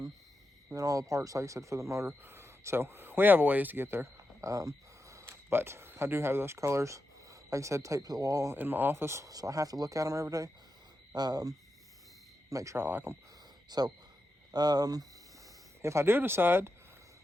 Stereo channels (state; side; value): normal; both; correlation 0.88